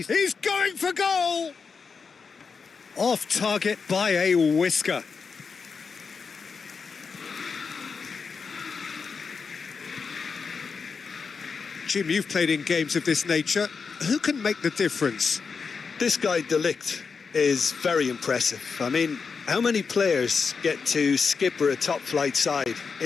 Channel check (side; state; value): right; quieter; 5.4 dB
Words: going for goal! Off target by a whisker. Jim, you've played in games of this nature. Who can make the difference? This guy, De Ligt, is very impressive. I mean, how many players get to skipper a top-flight side